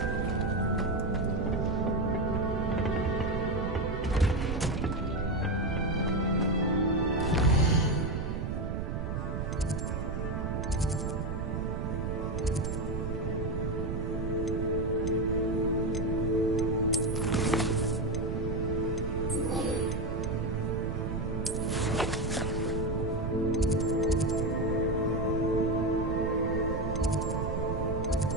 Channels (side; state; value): right; noise; rumble, 2 dB below the sound